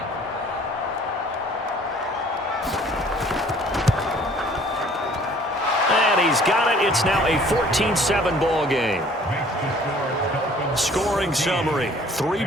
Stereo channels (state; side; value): normal; both; correlation 0.54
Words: And he's got it. It's now a 14-7 ball game. Scoring summary,